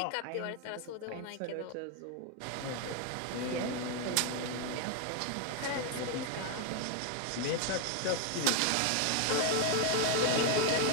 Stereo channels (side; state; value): both; different; correlation 0.01